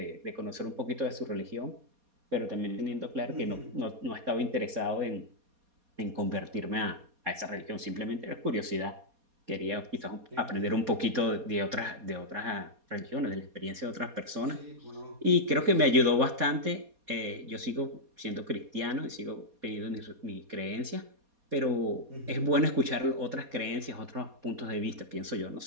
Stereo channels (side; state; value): left; late; 4.2 ms